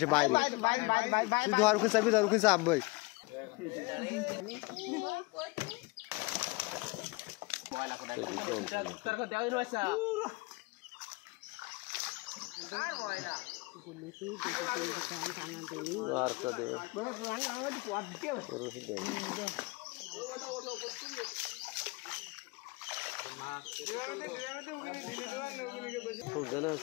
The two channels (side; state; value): right; quieter; 25.0 dB